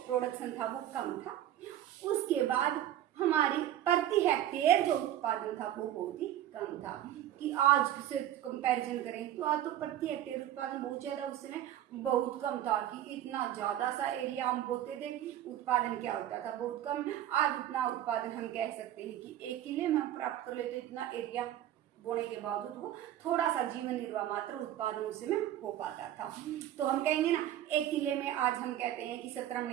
प्रोडक्शन था वो कम था। उसके बाद हमारी प्रति हेक्टेयर जो उत्पादन था वो बहुत ही कम था। कि आज से कंपैरिजन करें तो आज तो प्रति हेक्टेयर उत्पादन बहुत ज्यादा, उस समय बहुत कम था, कि इतना ज्यादा सा एरिया हम बोते थे, उत्पादन क्या होता था, बहुत कम। आज उतना उत्पादन हम कह सकते हैं कि 1 किले में हम प्राप्त कर लेते, इतना एरिया बोने के बावजूद वो थोड़ा सा जीवन निर्वाह मात्र उत्पादन उसमें हो पाता था। तो हम कहेंगे ना 1 किले में आज हम कहते हैं कि 17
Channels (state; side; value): quieter; left; 12.1 dB